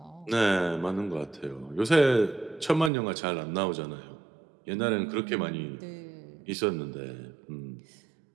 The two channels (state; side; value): drops out; left; at 2.9 s